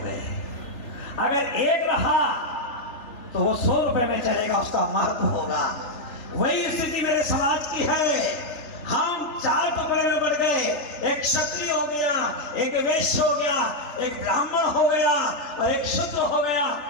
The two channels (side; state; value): right; late; 3.4 ms